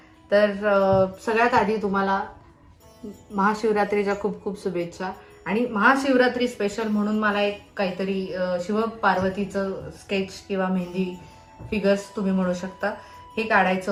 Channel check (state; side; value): identical; both; correlation 1.00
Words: तर सगळ्यात आधी तुम्हाला महाशिवरात्रीच्या खूप खूप शुभेच्छा. आणि महाशिवरात्री स्पेशल म्हणून मला एक काहीतरी शिव पार्वतीचं स्केच किंवा मेहंदी फिगर्स तुम्ही म्हणू शकता हे काढायचं